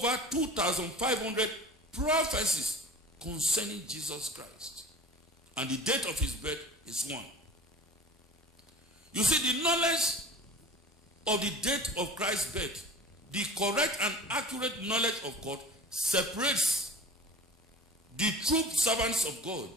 2,500 prophecies concerning Jesus Christ. And the date of his birth is one. You see, the knowledge of the date of Christ's birth, the correct and accurate knowledge of God, separates the true servants of God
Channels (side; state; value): both; normal; correlation 0.39